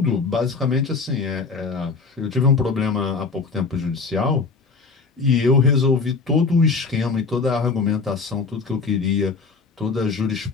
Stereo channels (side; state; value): right; quieter; 4.6 dB